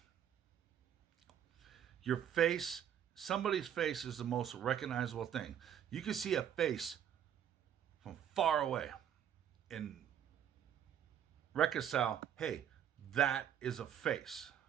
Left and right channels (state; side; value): quieter; left; 9.5 dB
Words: your face, somebody's face is the most recognizable thing. You can see a face from far away and reconcile, hey, that is a face.